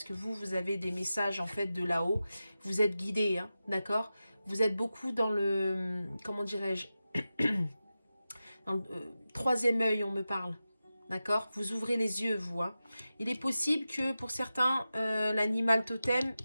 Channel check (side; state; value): both; inverted; correlation -0.93